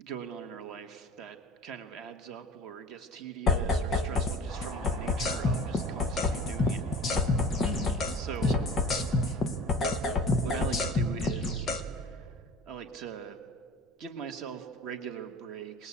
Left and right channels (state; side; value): normal; both; correlation 0.39